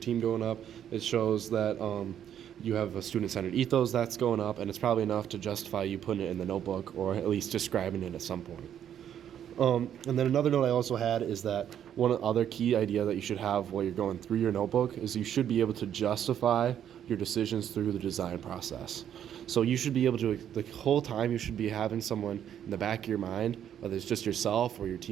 going up. It shows that you have a student-centered ethos that's going up, and it's probably enough to justify you putting it in the notebook or at least describing it at some point. And then another note I also had is that one other key idea that you should have while you're going through your notebook is you should be able to justify your decisions through the design process. So you should be able to, the whole time you should be having someone in the back of your mind, whether it's just yourself or your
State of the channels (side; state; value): left; quieter; 9.8 dB